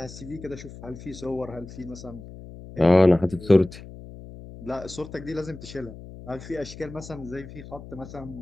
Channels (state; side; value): noise; left; hum, 15 dB below the sound